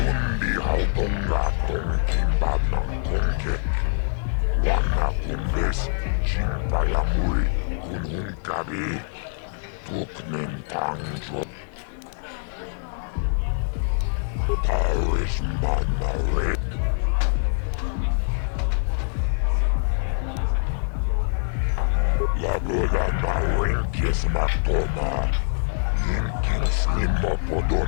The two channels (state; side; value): silent; right; 62 dB below the other